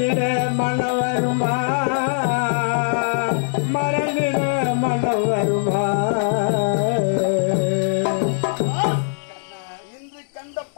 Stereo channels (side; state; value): right; silent; digital silence